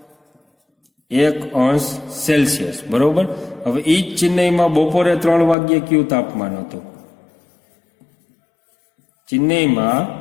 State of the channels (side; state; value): right; drops out; at 5.6 s